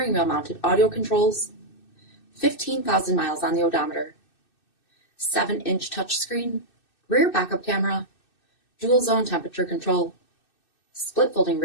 wheel mounted audio controls, 15,000 miles on the odometer, 7-inch touchscreen, rear backup camera, dual zone temperature control, split folding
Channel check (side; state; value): right; late; 2.6 ms